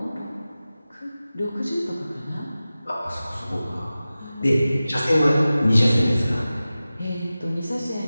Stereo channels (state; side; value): inverted; both; correlation -0.95